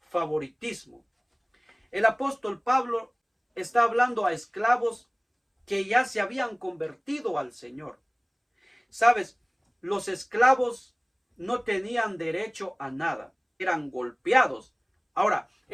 favoritismo. El apóstol Pablo está hablando a esclavos que ya se habían convertido al Señor. Sabes, los esclavos no tenían derecho a nada, eran golpeados. Ahora,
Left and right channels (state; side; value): identical; both; correlation 1.00